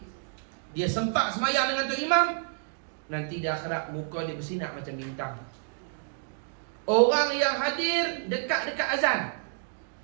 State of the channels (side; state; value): left; silent; digital silence